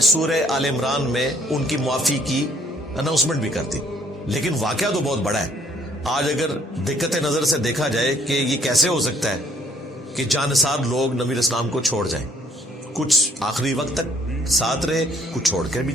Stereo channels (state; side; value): normal; both; correlation 0.63